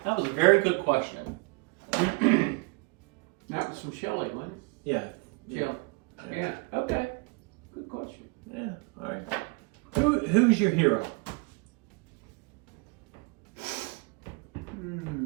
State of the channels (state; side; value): quieter; left; 28.4 dB